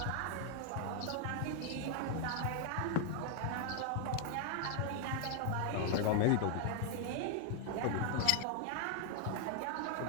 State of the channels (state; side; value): different; both; correlation 0.00